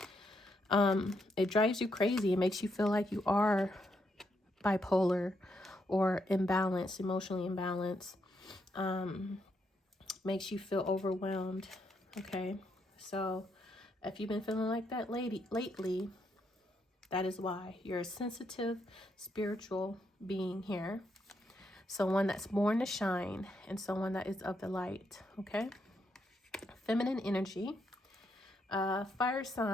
It drives you crazy. It makes you feel like you are bipolar or imbalanced, emotionally imbalanced. Makes you feel overwhelmed. Okay, so if you've been feeling like that lately, that is why. You're a sensitive, spiritual being here. Someone that's born to shine and someone that is of the light. Okay. Feminine energy. Fire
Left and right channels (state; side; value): normal; both; correlation 0.78